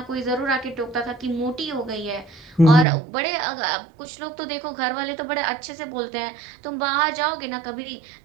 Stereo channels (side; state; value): left; drops out; at 2.9 s